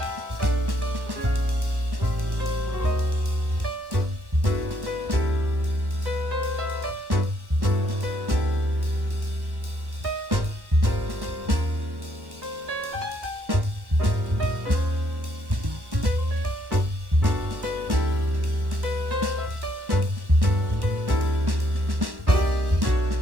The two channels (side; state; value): left; late; 1.1 ms